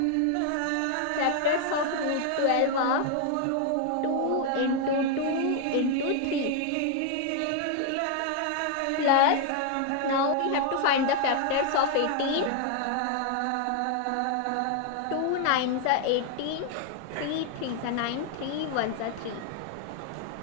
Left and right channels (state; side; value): different; both; correlation 0.00